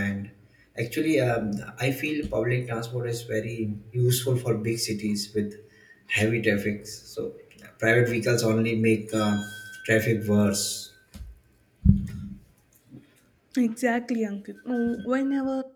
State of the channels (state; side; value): identical; both; correlation 1.00